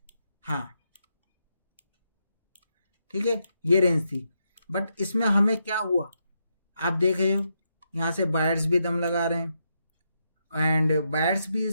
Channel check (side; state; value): both; inverted; correlation -0.82